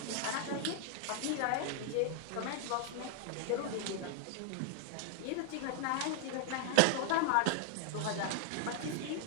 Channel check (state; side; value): different; both; correlation 0.00